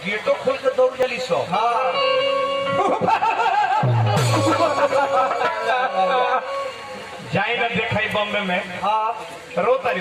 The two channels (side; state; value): both; identical; correlation 1.00